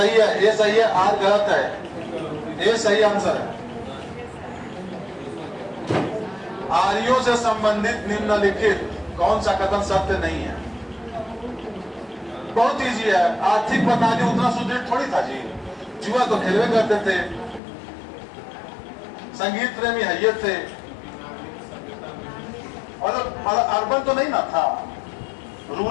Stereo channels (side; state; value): right; drops out; at 17.6 s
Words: है, ये सही है, आर गलत है, ये सही आंसर है। आर्यों से संबंधित निम्नलिखित कौन सा कथन सत्य नहीं है? बहुत इजी है। आर्थिक प्रणाली उतना सुदृढ़ थोड़ी था जी, जुआ तो खेलवे करते थे, संगीत प्रेमी है ये थे, और अर्बन तो नहीं ना था,